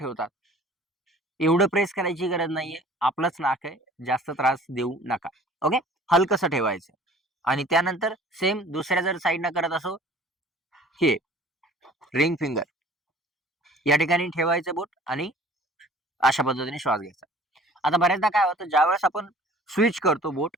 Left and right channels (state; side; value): normal; both; correlation 0.49